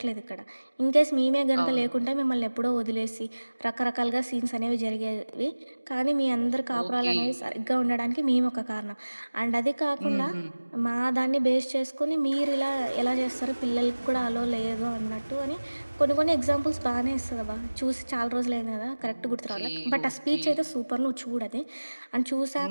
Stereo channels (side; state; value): both; inverted; correlation -1.00